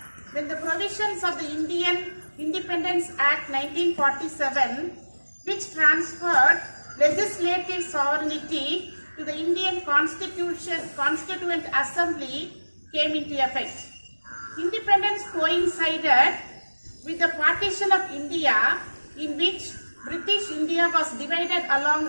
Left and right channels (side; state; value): both; inverted; correlation -1.00